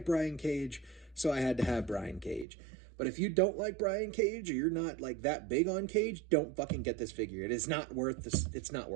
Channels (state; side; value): drops out; left; at 2.5 s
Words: Brian Cage, so I had to have Brian Cage. But if you don't like Brian Cage, or you're not like that big on Cage, don't fucking get this figure. It is not worth this. It's not